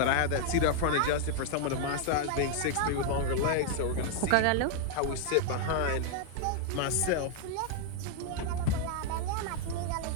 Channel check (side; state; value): both; different; correlation 0.00